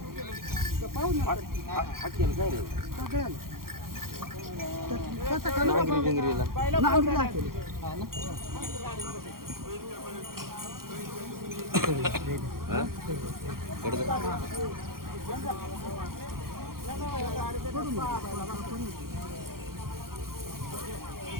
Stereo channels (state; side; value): late; left; 0.92 ms